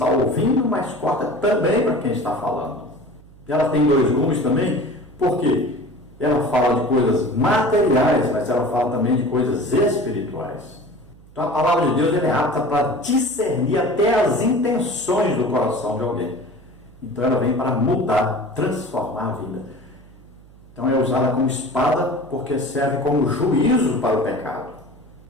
ouvindo, mas corta também para quem está falando. Ela tem dois gumes também, porque ela fala de coisas materiais, mas ela fala também de coisas espirituais. Então a palavra de Deus é apta para discernir até as intenções do coração de alguém. Então ela vem para mudar, transformar a vida. Então é usada como espada porque serve como juízo para o pecado.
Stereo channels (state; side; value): noise; right; hum, 24 dB below the sound